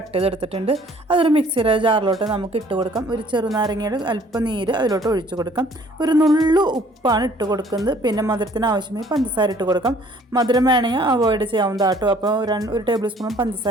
ചെയ്തെടുത്തിട്ടുണ്ട്. അതൊരു മിക്സിയുടെ ജാറിലോട്ട് നമുക്ക് ഇട്ട് കൊടുക്കാം. ഒരു ചെറുനാരങ്ങയുടെ അല്പം നീര് അതിലോട്ട് ഒഴിച്ചു കൊടുക്കാം. ഒരു നുള്ളു ഉപ്പാണ് ഇട്ട് കൊടുക്കുന്നത്. പിന്നെ മധുരത്തിന് ആവശ്യമായി പഞ്ചസാര ഇട്ട് കൊടുക്കാം. മധുരം വേണമെങ്കിൽ അവോയ്ഡ് ചെയ്യാവുന്നതാട്ടോ. അപ്പോൾ ഒരു ടേബിൾ സ്പൂൺ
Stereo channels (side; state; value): both; normal; correlation 0.57